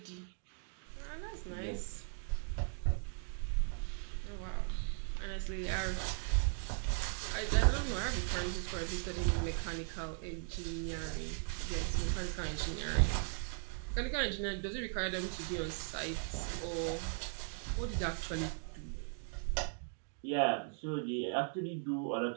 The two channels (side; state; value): left; silent; 52 dB below the other